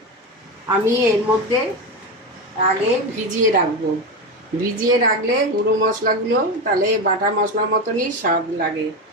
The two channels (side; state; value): both; normal; correlation 0.17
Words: আমি এর মধ্যে আগে ভিজিয়ে রাখবো। ভিজিয়ে রাখলে গুঁড়ো মশলাগুলো তাহলে বাটা মশলার মতনই স্বাদ লাগে।